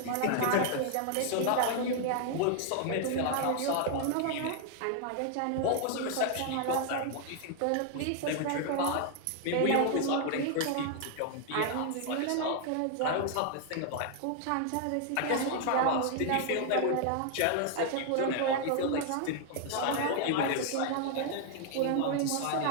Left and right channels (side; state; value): both; different; correlation 0.00